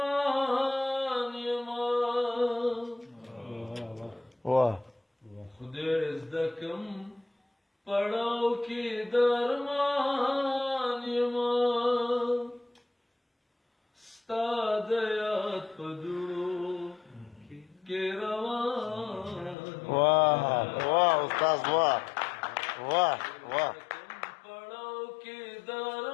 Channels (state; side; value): drops out; right; at 19.6 s